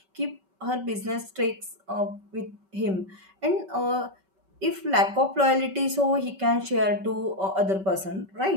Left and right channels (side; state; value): left; late; 5.2 ms